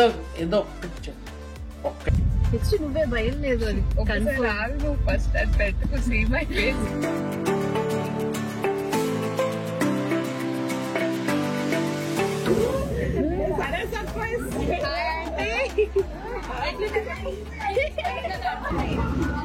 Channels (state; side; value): identical; both; correlation 1.00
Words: నెక్స్ట్ నువ్వే భయం లేదు అని ఫస్ట్ అది పెట్టుకు సీ మై ఫేస్.